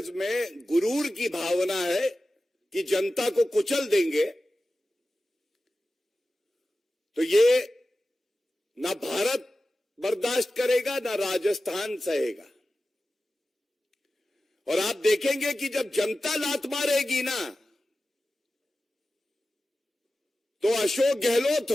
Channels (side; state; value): both; normal; correlation 0.94